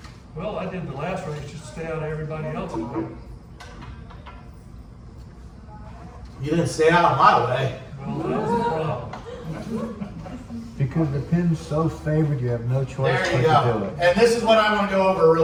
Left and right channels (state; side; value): identical; both; correlation 1.00